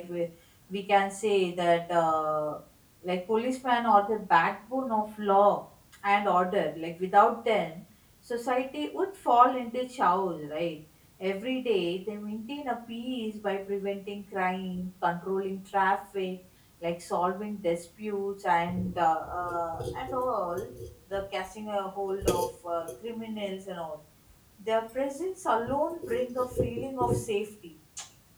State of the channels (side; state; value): both; identical; correlation 1.00